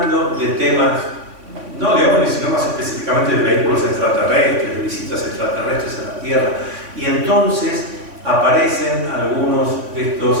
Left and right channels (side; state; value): left; late; 3.6 ms